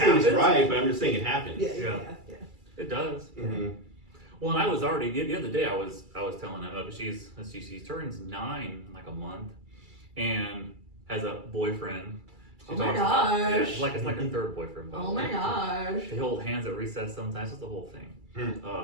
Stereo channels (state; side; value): late; left; 2.3 ms